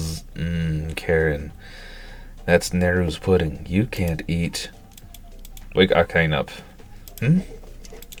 Karen. That's Neru's pudding. You can't eat. Wake Akane up.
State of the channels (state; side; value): identical; both; correlation 1.00